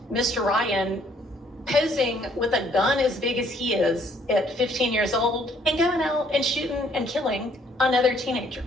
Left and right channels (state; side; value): normal; both; correlation 0.64